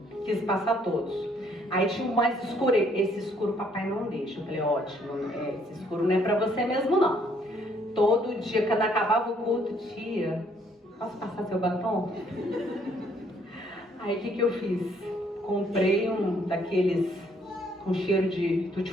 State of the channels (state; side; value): normal; both; correlation 0.66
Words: Quis passar todos. Aí tinha um mais escuro. Esse escuro papai não deixa. Eu falei, ótimo. Esse escuro não é para você mesmo, não. Todo dia, quando acabava o culto, tia, posso passar seu batom? Aí o que eu fiz? Comprei um daqueles com cheiro de